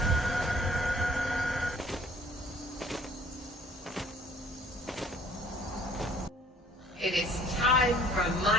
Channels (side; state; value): both; normal; correlation 0.55